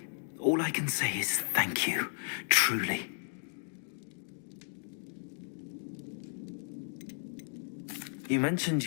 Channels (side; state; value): right; silent; digital silence